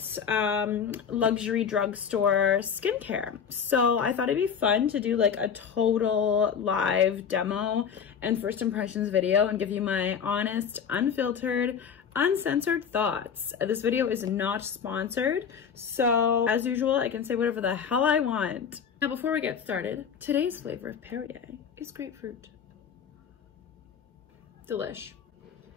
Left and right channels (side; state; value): right; quieter; 7.2 dB